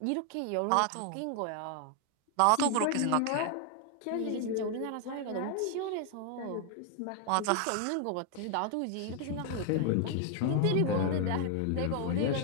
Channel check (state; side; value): different; both; correlation 0.00